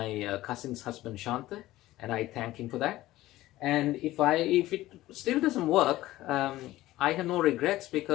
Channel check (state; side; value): quieter; right; 16.3 dB